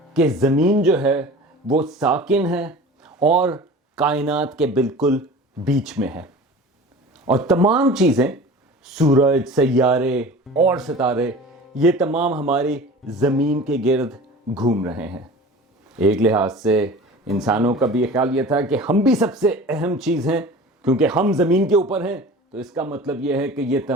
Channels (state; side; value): normal; both; correlation 0.39